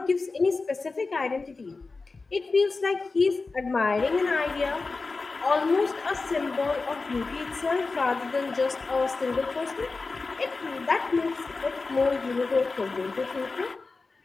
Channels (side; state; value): right; quieter; 3.9 dB